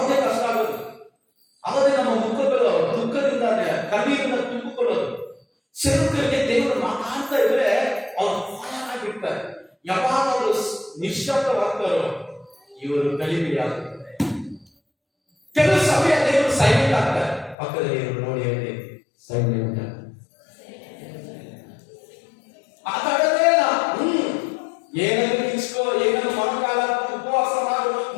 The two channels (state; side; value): drops out; right; at 17.6 s